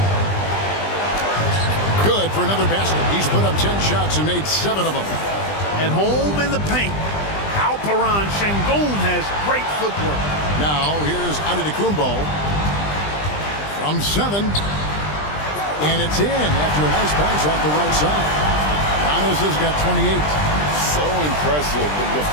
Good for another basket. He's put up 10 shots and made 7 of them. At home in the paint, Alperen Şengün has great footwork. Now here's Antetokounmpo from 7. And it's in after a nice bounce off the right side. Giannis has got 28. So impressive. The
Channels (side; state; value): right; late; 20 ms